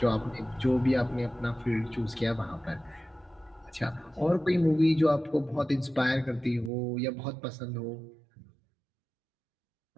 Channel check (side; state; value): left; drops out; at 6.7 s